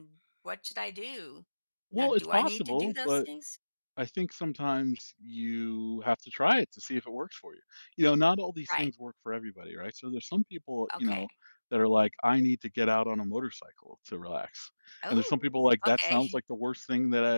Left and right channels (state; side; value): inverted; both; correlation -1.00